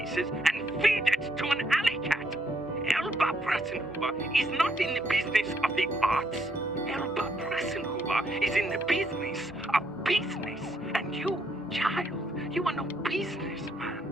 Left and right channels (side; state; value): both; normal; correlation 0.73